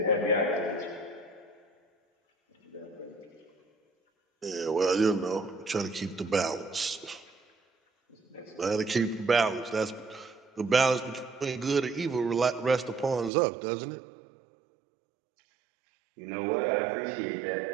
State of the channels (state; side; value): drops out; left; at 13.3 s